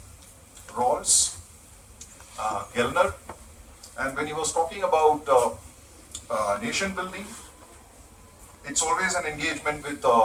Rawls, Gellner, and when he was talking about nation building, it's always an engagement with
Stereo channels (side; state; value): both; identical; correlation 1.00